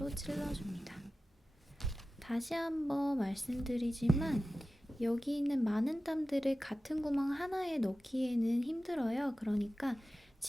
찔러줍니다. 다시 한번 말씀드리지만 여기 있는 많은 땀들을 같은 구멍 하나에 넣기에는 힘들어요. 그러니까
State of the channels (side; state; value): both; normal; correlation 0.95